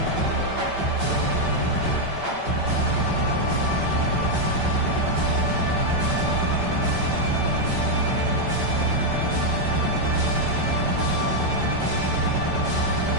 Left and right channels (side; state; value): left; late; 5.2 ms